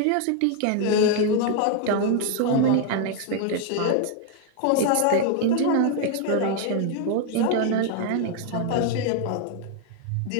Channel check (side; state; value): both; different; correlation 0.00